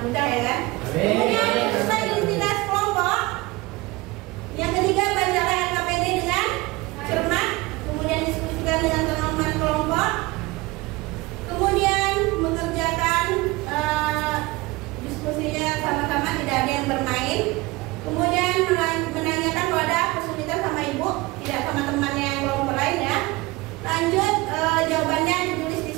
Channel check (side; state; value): left; quieter; 21.9 dB